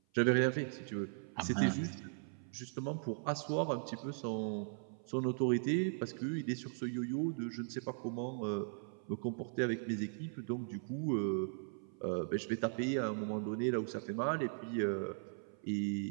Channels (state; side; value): silent; left; 52 dB below the other